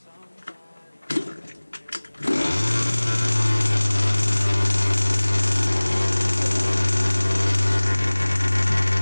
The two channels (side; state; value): both; inverted; correlation -1.00